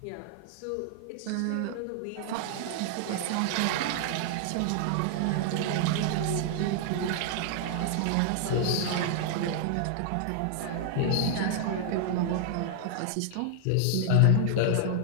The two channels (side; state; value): both; different; correlation 0.00